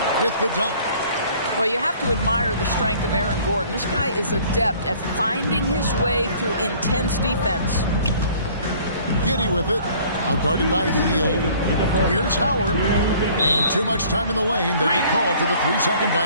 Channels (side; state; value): both; inverted; correlation -0.54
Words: with the dunk. Well, you have to admire the strength of Aaron Gordon. This guy is adept at finding his way through intense defense. Giddey with it. Outguarded by Hield. Here's Howard. And too much time in the lane. They get called for the 3-second